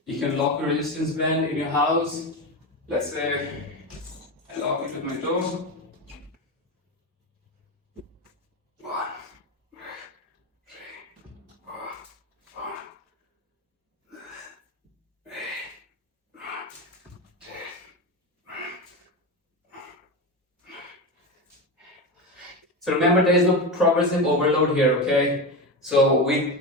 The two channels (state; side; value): normal; both; correlation 0.20